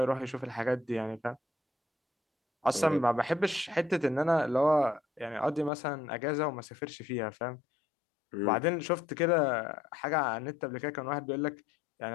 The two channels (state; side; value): drops out; right; at 5.7 s